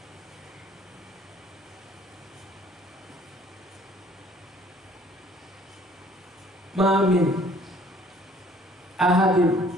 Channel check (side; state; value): both; normal; correlation 0.56